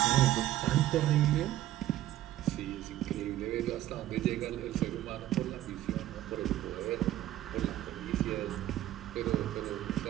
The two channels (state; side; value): quieter; left; 13.8 dB